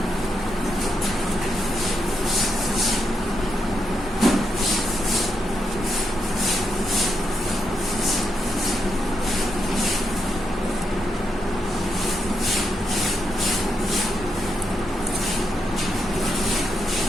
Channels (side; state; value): both; normal; correlation 0.83